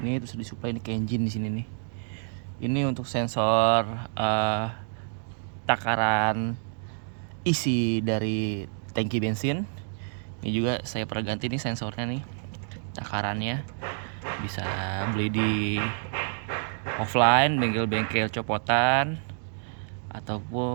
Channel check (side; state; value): left; silent; 59 dB below the other